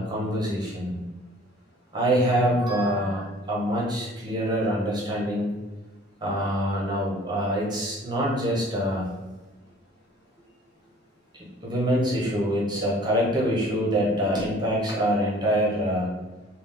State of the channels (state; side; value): normal; both; correlation 0.51